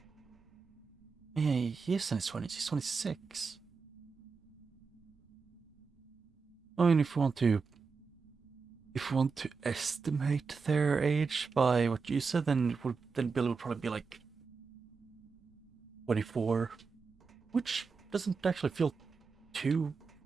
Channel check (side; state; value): left; quieter; 5.0 dB